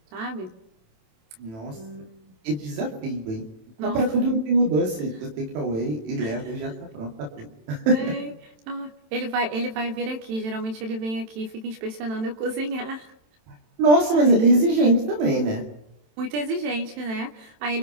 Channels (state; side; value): late; left; 27 ms